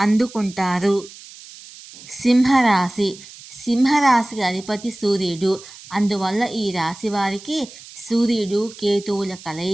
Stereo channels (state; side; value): noise; right; hiss, 18 dB below the sound